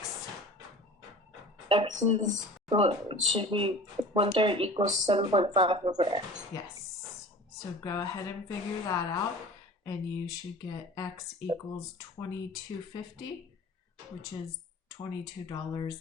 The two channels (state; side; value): normal; both; correlation 0.40